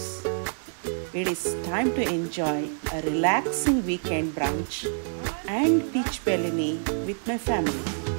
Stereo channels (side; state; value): left; silent; digital silence